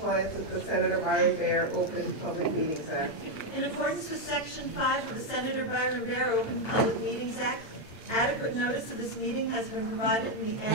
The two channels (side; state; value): right; late; 8.9 ms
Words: with the Senator Byron Bear Open Public Meetings Act? In accordance with Section 5 of the Senator Byron Bear Open Public Meetings Act, adequate notice of this meeting has been provided in the